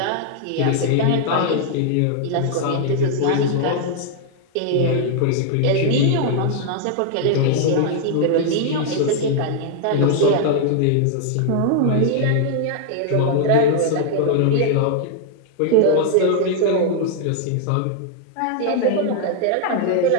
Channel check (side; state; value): both; different; correlation 0.00